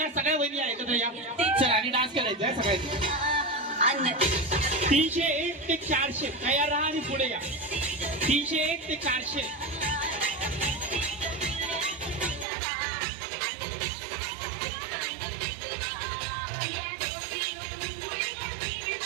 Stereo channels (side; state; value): left; drops out; at 12.5 s